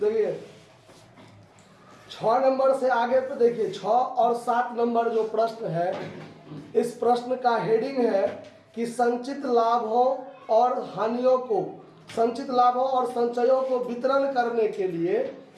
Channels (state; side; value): identical; both; correlation 1.00